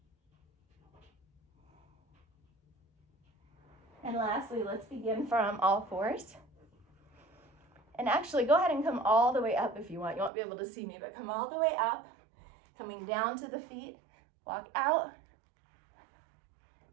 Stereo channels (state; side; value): drops out; left; at 10.3 s